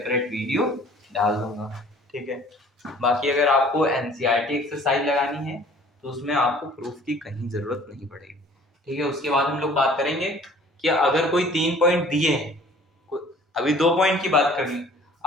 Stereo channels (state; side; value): normal; both; correlation 0.51